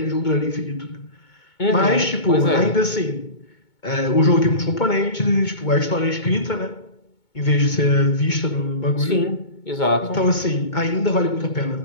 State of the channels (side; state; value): right; late; 2.2 ms